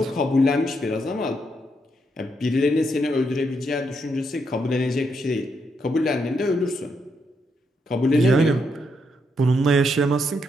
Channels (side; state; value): both; normal; correlation 0.79